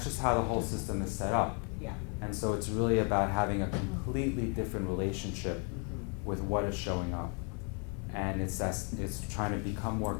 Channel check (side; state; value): right; quieter; 38.5 dB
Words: how the whole system is set up. Yeah. And so it's really about having a completely different relationship with what is showing up. And it's trying to become more